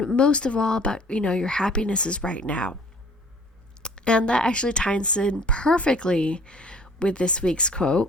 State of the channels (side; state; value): both; normal; correlation 0.53